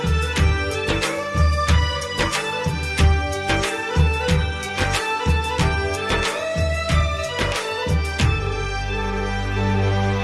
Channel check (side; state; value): both; identical; correlation 1.00